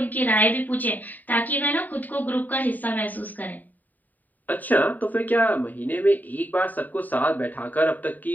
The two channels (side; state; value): right; late; 0.085 ms